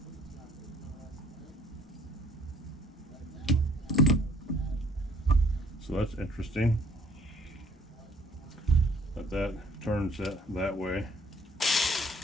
So that's interesting. But that turns it that way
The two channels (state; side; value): normal; both; correlation 0.59